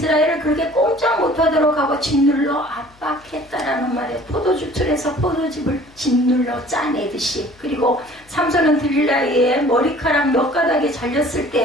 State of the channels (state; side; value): noise; left; hum, 28 dB below the sound